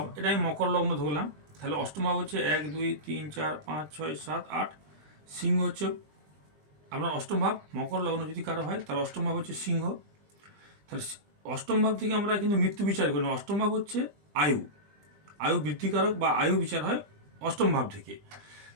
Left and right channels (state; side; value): late; left; 20 ms